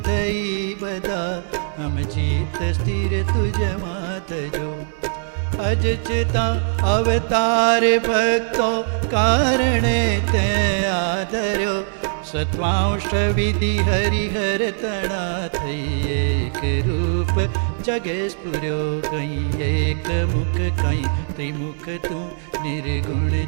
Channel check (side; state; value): left; silent; digital silence